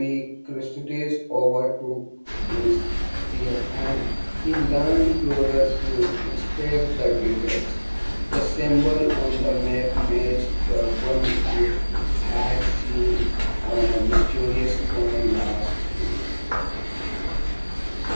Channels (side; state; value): both; inverted; correlation -1.00